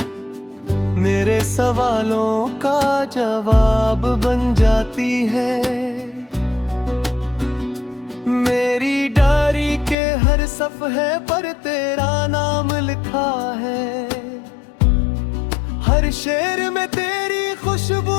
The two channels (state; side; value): drops out; right; at 10.0 s